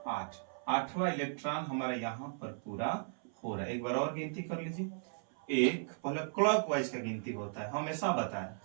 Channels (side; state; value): left; silent; 54 dB below the other